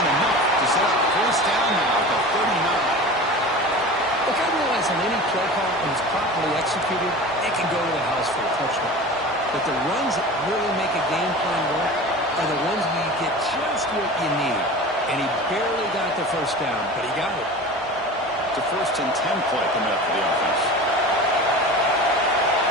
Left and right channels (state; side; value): normal; both; correlation 0.35